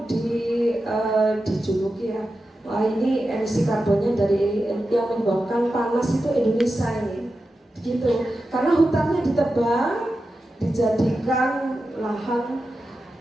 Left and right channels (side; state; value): both; normal; correlation 0.91